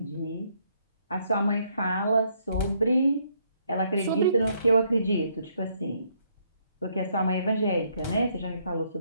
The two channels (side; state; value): both; inverted; correlation -0.71